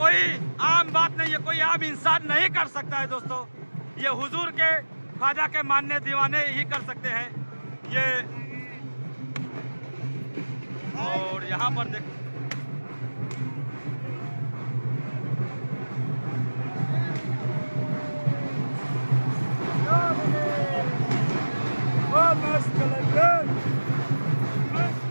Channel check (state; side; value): inverted; both; correlation -1.00